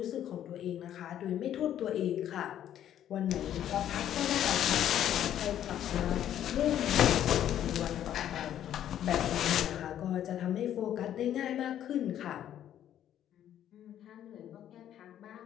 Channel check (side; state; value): right; quieter; 10.9 dB